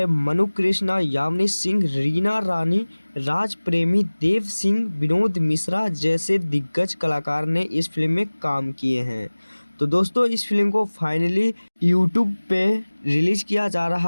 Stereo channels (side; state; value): both; inverted; correlation -1.00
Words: मनु कृष्णा, यामिनी सिंह, रीना रानी, राज प्रेमी, देव सिंह, विनोद मिश्रा जैसे दिग्गज कलाकार ने इस फिल्म में काम किए हैं। तो दोस्तों, इस फिल्म को फाइनली यूट्यूब पे रिलीज किया जा